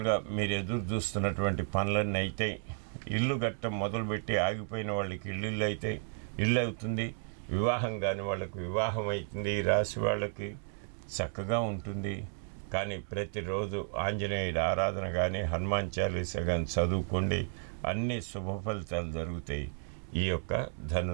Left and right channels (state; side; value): silent; left; 56 dB below the other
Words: మీరు ఎదురు చూస్తున్నటువంటి పనులన్నీ అయితే, ఇల్లు గట్ట మొదలుపెట్టి ఆగిపోయిన వాళ్ళకి ఇల్లు అయితే ఇల్లు అవుతుంది, వివాహం కాని వాళ్ళకి వివాహం అవుతుంది. ఈ రాశి వాళ్ళకి చక్కగా ఉంటుంది. కానీ ప్రతిరోజు ఆంజనేయుడి ఆరాధన కానీ, హనుమాన్ చాలీసా కానీ చదువుకోండి, అన్ని శుభ ఫలితాలు జరుగుతాయి ఈ యొక్క